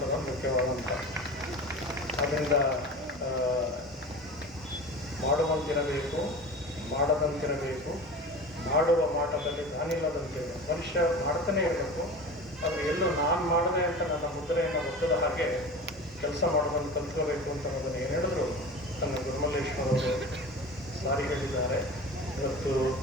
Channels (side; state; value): both; normal; correlation 0.33